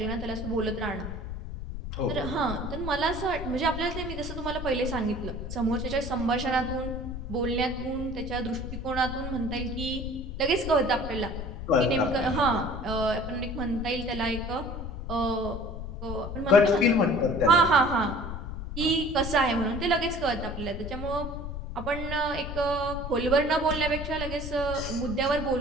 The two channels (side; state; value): left; noise; rumble, 7 dB below the sound